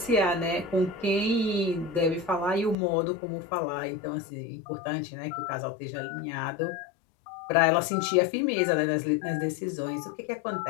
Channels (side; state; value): right; drops out; at 2.8 s